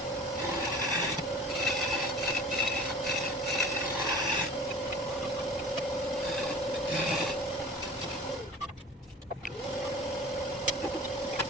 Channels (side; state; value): both; normal; correlation 0.42